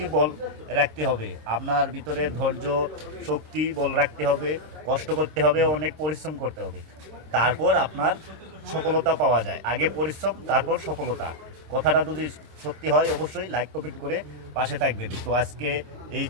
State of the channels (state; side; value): late; left; 26 ms